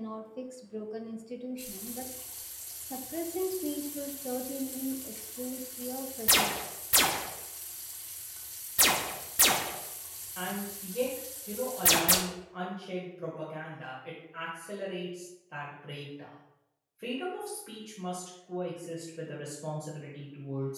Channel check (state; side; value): identical; both; correlation 1.00